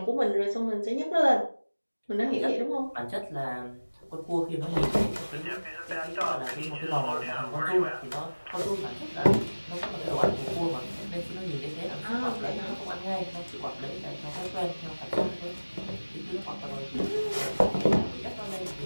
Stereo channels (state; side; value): inverted; both; correlation -1.00